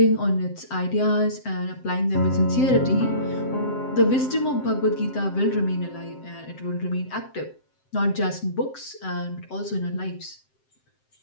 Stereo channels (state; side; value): late; right; 7.7 ms